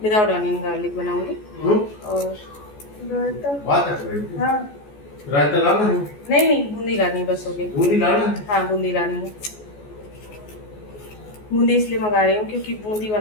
Without onion garlic बनाऊंगी। और हाँ, रायता लाना है? नहीं नहीं, बूंदी लानी बस हो गई। बूंदी लाना है? हाँ, बूंदी लानी है। बूंदी इसलिए मंगा रही हूँ क्योंकि बूंदी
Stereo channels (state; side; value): late; right; 14 ms